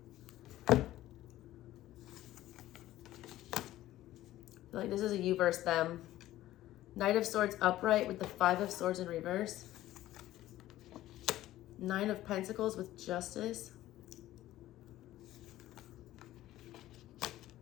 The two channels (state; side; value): quieter; right; 14.8 dB